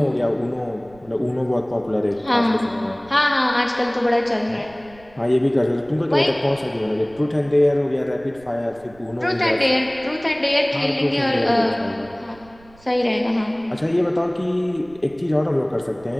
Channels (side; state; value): right; noise; rumble, 25 dB below the sound